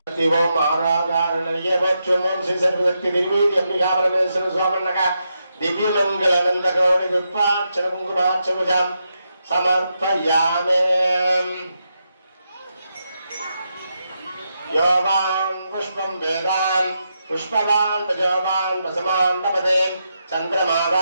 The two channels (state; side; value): inverted; both; correlation -0.84